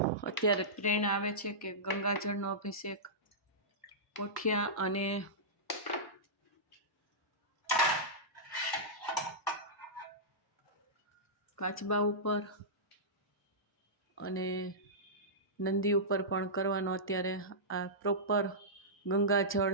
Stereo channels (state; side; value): normal; both; correlation -0.16